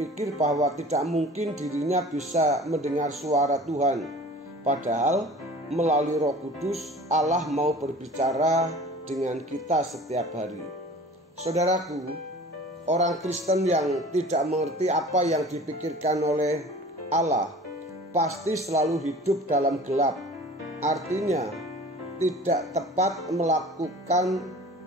bahwa tidak mungkin dirinya bisa mendengar suara Tuhan. Padahal melalui Roh Kudus Allah mau berbicara dengan kita setiap hari. Saudaraku, orang Kristen yang tidak mengerti apa yang dipikirkan oleh Allah pasti selalu hidup dalam gelap. Artinya tidak tepat melakukan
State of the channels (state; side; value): normal; both; correlation 0.43